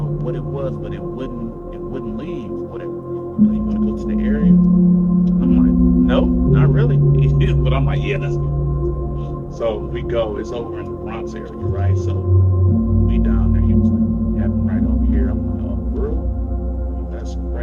what it was, but it wouldn't leave. Whatever. He like, you want to go to the area? I'm like, no, not really. But I'm like, yeah, let's go. So we go. It's over in the Bronx area, right? So we down there. He was like, yeah, I'm right over here. I'm like, oh, for real? That's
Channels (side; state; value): both; identical; correlation 1.00